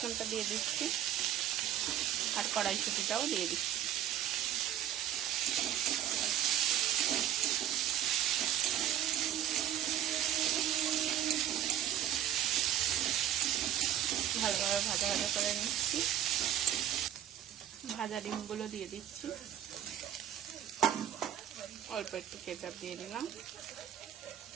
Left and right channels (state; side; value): quieter; left; 10.9 dB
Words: দিয়ে দিচ্ছি, আর কড়াইশুঁটিটাও দিয়ে দিচ্ছি। ভালোভাবে ভাজা ভাজা করে নিচ্ছি। ভাজা ডিমগুলো দিয়ে দিচ্ছি, অল্প একটু কেচাপ দিয়ে দিলাম।